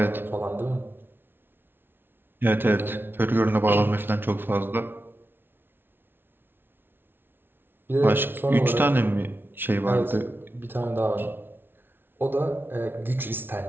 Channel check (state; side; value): late; left; 0.10 ms